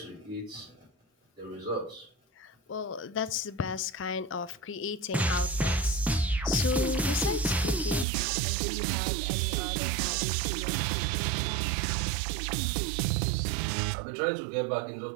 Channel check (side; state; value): left; drops out; at 8.1 s